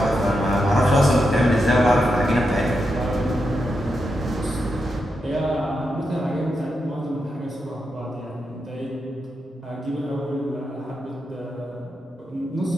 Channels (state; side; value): normal; both; correlation 0.85